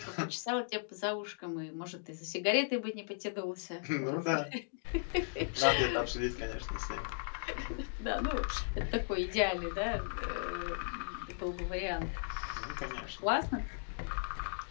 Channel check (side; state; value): right; silent; digital silence